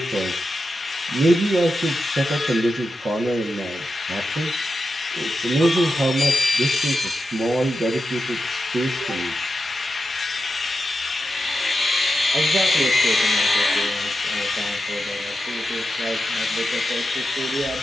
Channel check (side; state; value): both; normal; correlation 0.89